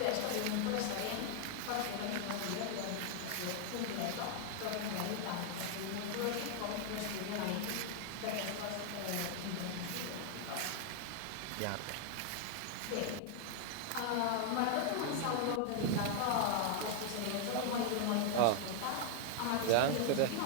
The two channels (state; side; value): different; both; correlation 0.00